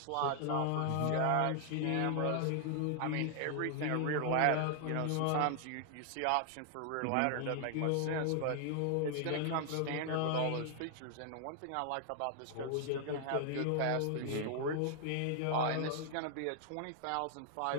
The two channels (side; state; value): both; different; correlation 0.00